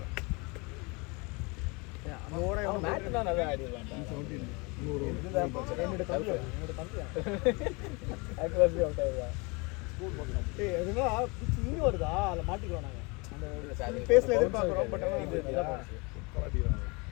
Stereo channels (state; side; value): quieter; right; 28.6 dB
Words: மேட்ச் தான் நல்லா ஆடிடலாம் என்னோட தம்பி ஆக்சுவலி அவுட் ஆயிடுவா எதுனா இங்க வருதா அதுல மாட்டிக்கிறோம் நாங்க அந்த பேஸ்ல எதிர்பார்க்கறோம் பட்